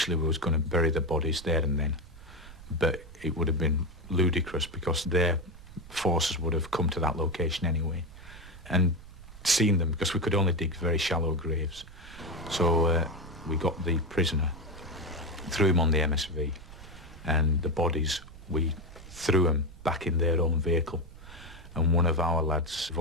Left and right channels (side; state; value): right; noise; rumble, 17 dB below the sound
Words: we was going to bury the bodies there and then, but it would have been ludicrous because their forces would have come to that location anyway and seen them, because we could only dig very shallow graves. So we got the prisoner, threw him on the MSV, and the bodies, we threw them back in their own vehicle, and one of our lads